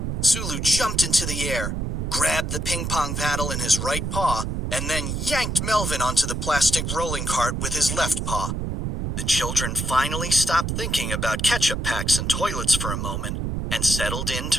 Sulu jumped into the air, grabbed the ping-pong paddle in his right paw, and then yanked Melvin onto the plastic rolling cart with his left paw. The children finally stopped thinking about ketchup packs and toilets for a moment and settled in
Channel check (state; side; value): noise; right; rumble, 2 dB below the sound